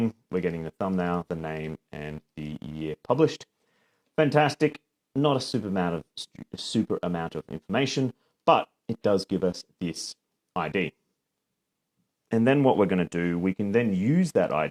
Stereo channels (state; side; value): identical; both; correlation 1.00